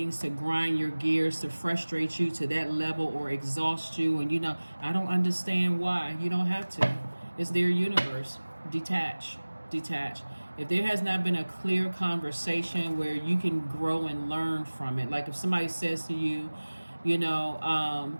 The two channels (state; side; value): inverted; both; correlation -1.00